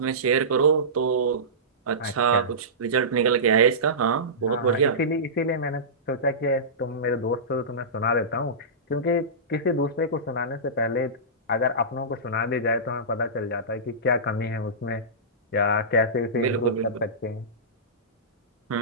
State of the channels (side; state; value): both; normal; correlation -0.20